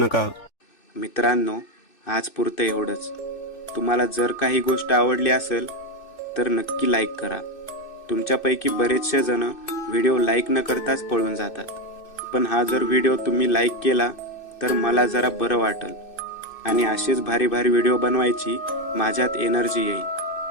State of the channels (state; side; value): late; right; 2.6 ms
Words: मित्रांनो, आज पुरतं एवढंच. तुम्हाला जर काही गोष्ट आवडली असेल तर नक्की लाईक करा. तुमच्यापैकी बरेचसे जण व्हिडिओ लाईक न करताच पळून जातात, पण हा जर व्हिडिओ तुम्ही लाईक केला तर मला जरा बरं वाटेल आणि असेच भारी भारी व्हिडिओ बनवायची माझ्यात एनर्जी येईल.